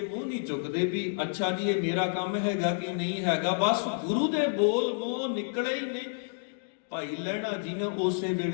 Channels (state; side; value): silent; right; digital silence